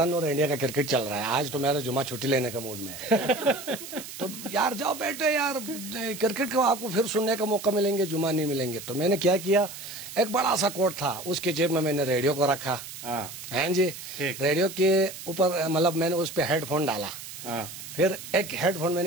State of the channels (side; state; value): right; noise; hiss, 12 dB below the sound